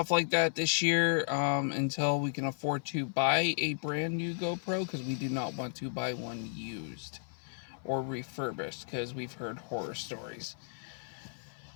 like that this year, until we can afford to buy a brand new GoPro, because we do not want to buy one used or refurbished, because we've heard horror stories.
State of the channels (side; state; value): right; silent; 55 dB below the other